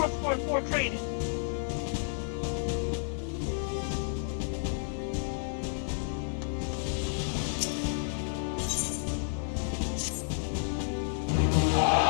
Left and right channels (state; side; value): silent; right; digital silence